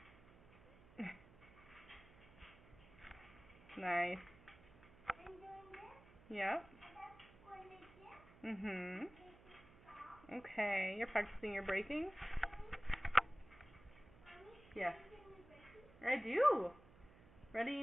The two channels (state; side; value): noise; right; hum, 22 dB below the sound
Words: Nice. Yep. Okay, you're practicing your braking? Yes. I do.